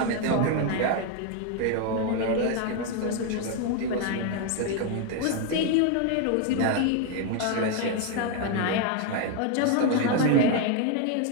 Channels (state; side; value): different; both; correlation 0.01